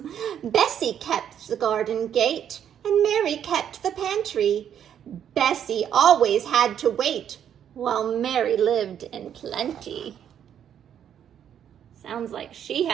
Bessie kept the garden gate and Mary kept the pantry. Bessie always had to wait while Mary lived in plenty. Sounds like she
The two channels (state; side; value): quieter; left; 9.3 dB